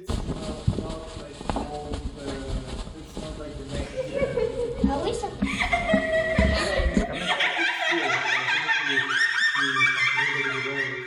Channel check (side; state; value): both; identical; correlation 1.00